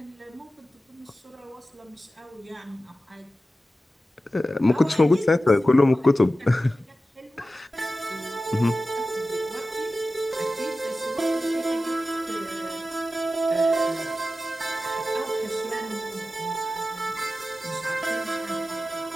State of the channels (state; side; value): normal; both; correlation 0.94